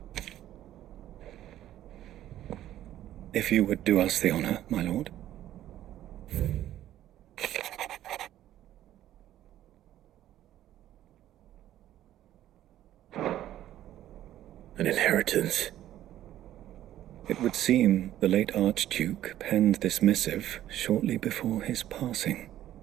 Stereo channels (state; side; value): quieter; left; 12.7 dB